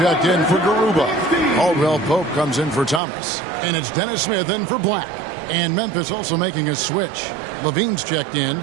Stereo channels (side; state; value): left; drops out; at 3.0 s